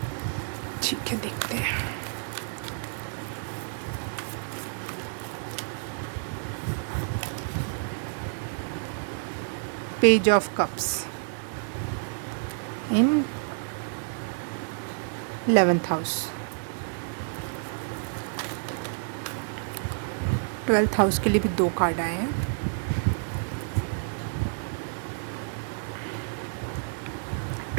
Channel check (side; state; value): left; silent; digital silence